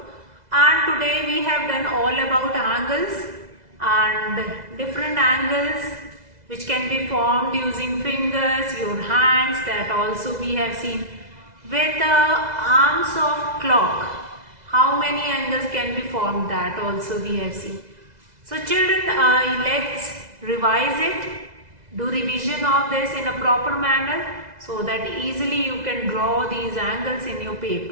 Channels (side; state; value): left; late; 2.0 ms